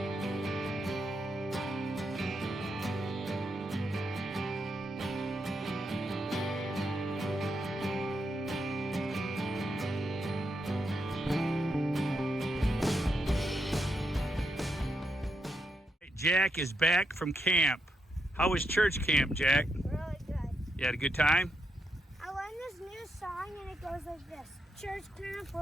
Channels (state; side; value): normal; both; correlation 0.82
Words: Jack is back from camp. How was church camp, Jack? Really good. You had a good time? I learned this new song and it goes like this. Church camp,